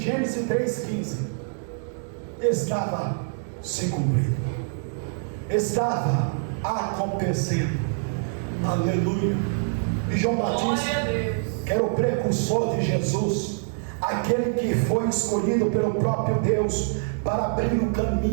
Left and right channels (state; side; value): silent; left; digital silence